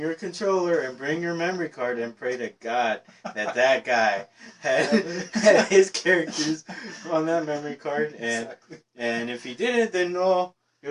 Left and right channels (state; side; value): identical; both; correlation 1.00